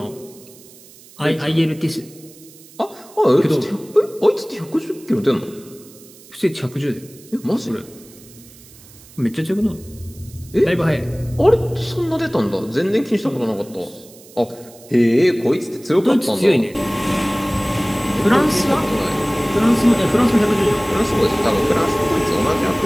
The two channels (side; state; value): right; noise; hiss, 23 dB below the sound